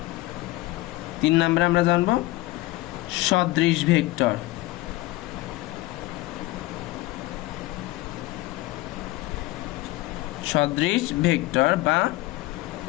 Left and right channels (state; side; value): quieter; right; 18.8 dB